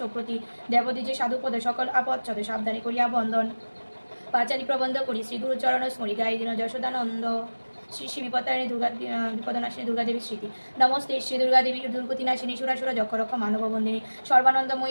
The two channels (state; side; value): inverted; both; correlation -1.00